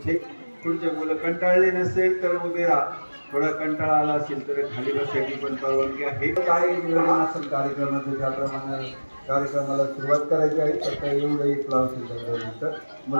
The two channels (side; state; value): both; inverted; correlation -1.00